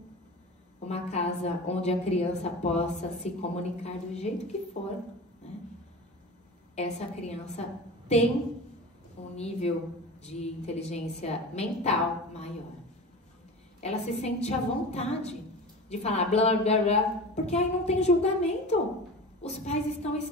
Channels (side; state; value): both; normal; correlation 0.32